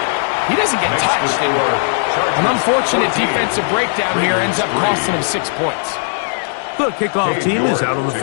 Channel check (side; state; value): right; silent; digital silence